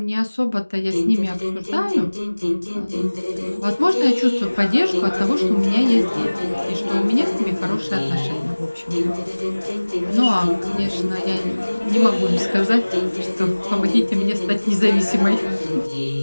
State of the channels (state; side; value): inverted; both; correlation -1.00